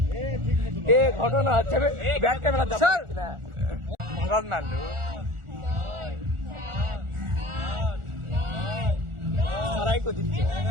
এ ঘটনা হচ্ছে ব্যাক ক্যামেরা দাও না মরদ না লো সারাই কো দিচ্ছে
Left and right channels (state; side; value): late; left; 1.4 ms